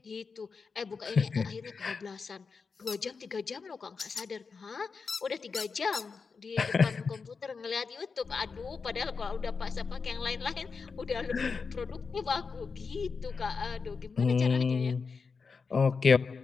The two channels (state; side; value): quieter; right; 5.0 dB